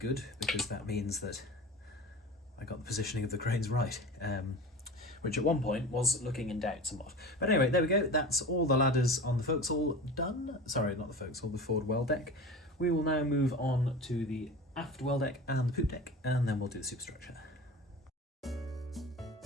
because that means that I got the positioning of the cranes right, which at one point was looking in doubt somewhat. But anyway, there we go. That's all the ladders on the forecastle done. Sorry, not the forecastle, the forward well deck. We will now move on to the aft well deck and the poop deck, and then we'll do the superstructure.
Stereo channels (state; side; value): normal; both; correlation 0.35